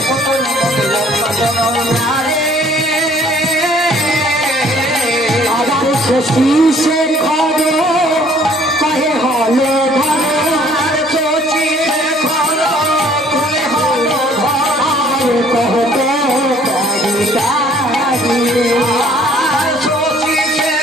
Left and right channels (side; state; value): both; normal; correlation 0.58